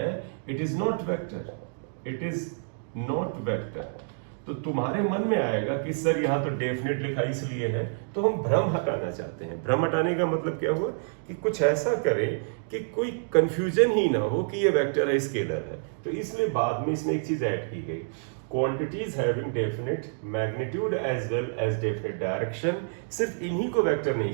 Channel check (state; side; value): silent; left; digital silence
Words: it is not vector, it is not vector. तो तुम्हारे मन में आएगा कि सर यहां तो डेफिनेट लिखा इसलिए है, तो हम भ्रम हटाना चाहते हैं। भ्रम हटाने का मतलब क्या हुआ कि कुछ ऐसा करें कि कोई कंफ्यूजन ही ना हो कि ये वेक्टर है, स्केलर है। तो इसलिए बाद में इसमें एक चीज ऐड की गई, quantities having definite magnitude as well as definite direction. सिर्फ इन्हीं को वेक्टर